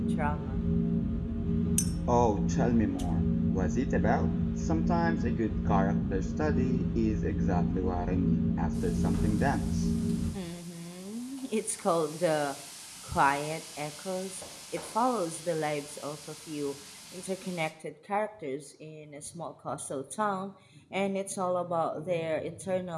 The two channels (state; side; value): identical; both; correlation 1.00